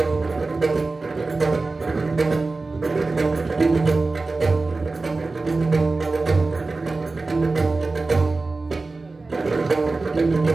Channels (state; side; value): quieter; left; 3.6 dB